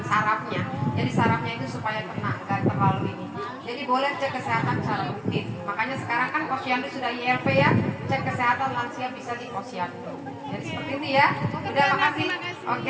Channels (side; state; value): both; identical; correlation 1.00